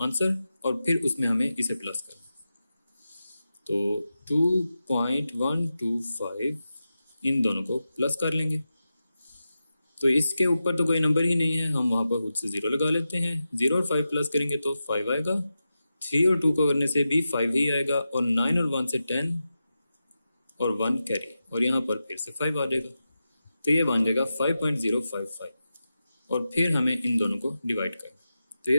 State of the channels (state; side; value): inverted; both; correlation -0.91